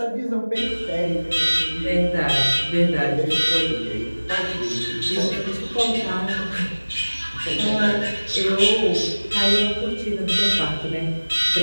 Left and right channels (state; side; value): inverted; both; correlation -1.00